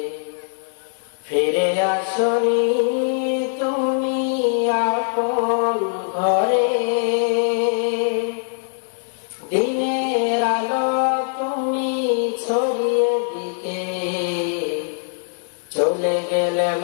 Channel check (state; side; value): silent; right; digital silence